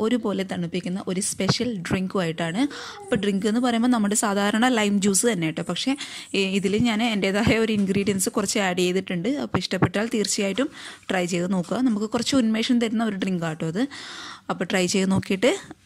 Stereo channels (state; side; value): identical; both; correlation 1.00